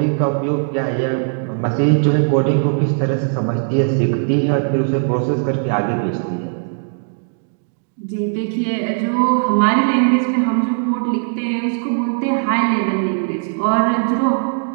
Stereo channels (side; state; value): left; silent; digital silence